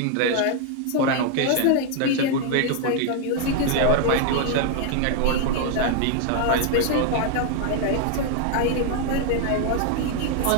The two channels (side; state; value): both; different; correlation 0.00